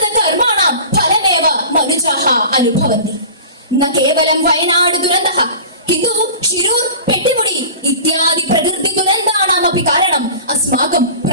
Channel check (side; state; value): both; inverted; correlation -0.38